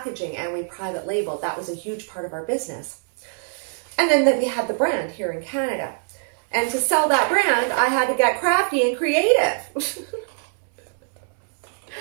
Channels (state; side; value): silent; left; digital silence